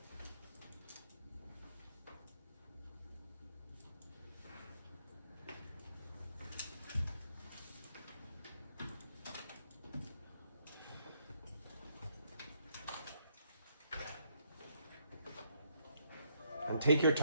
And take your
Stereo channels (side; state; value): both; inverted; correlation -0.72